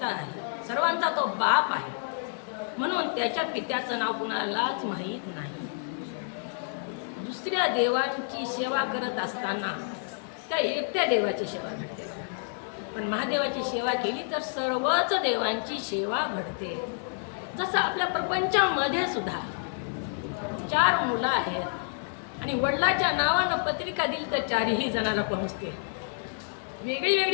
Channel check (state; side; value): silent; right; digital silence